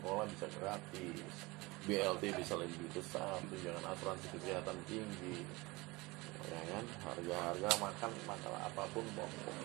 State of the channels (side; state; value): left; quieter; 23.1 dB